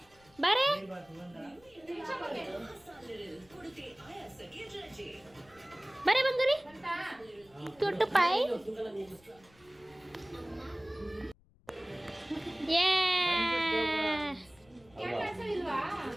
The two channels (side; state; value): left; noise; rumble, 29 dB below the sound